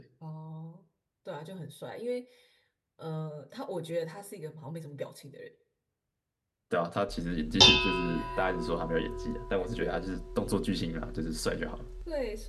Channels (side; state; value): both; identical; correlation 1.00